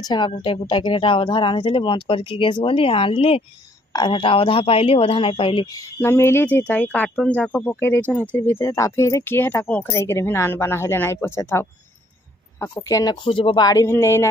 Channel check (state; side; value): normal; both; correlation 0.64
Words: छेगा गुटे गुटा के हेटा अधा रांधले बंद करके गैस गली आनली और हेटा अधा पाइली अधा नहीं पाइली न मिली थी ताई कार्टून जाको पकई देछन हेतिर भीतर ताफे रे के हेटा को ओखरे के भी नान बना हेले नहीं पछे थाओ आको केन खोजबो बाड़ी भी नहीं